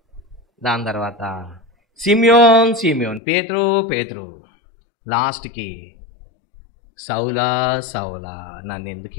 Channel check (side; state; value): right; drops out; at 3.2 s